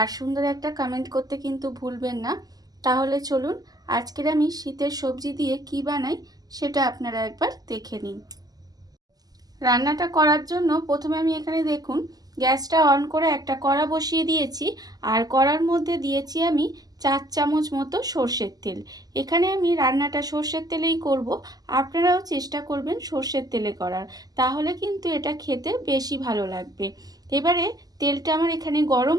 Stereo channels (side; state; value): left; late; 0.18 ms